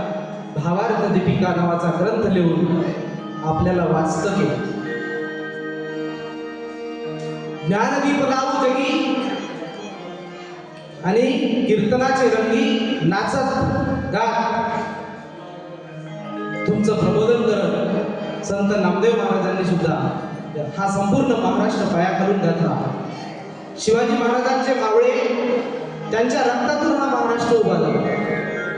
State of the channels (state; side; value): identical; both; correlation 1.00